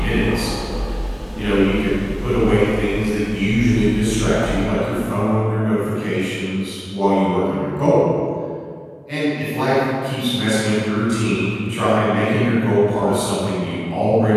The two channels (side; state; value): both; identical; correlation 1.00